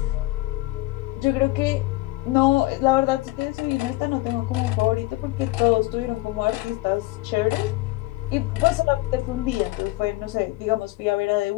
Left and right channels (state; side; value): quieter; right; 19.9 dB